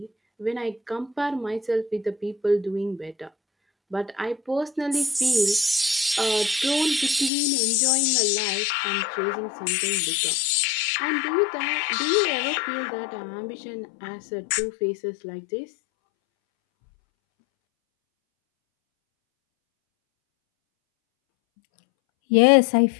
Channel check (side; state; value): right; drops out; at 7.3 s